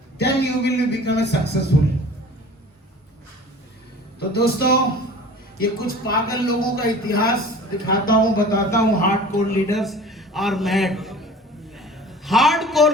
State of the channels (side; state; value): both; normal; correlation 0.43